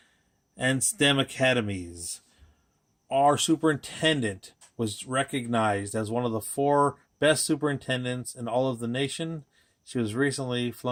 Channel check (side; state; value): both; identical; correlation 1.00